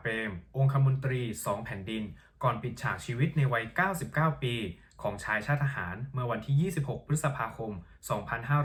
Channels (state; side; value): identical; both; correlation 1.00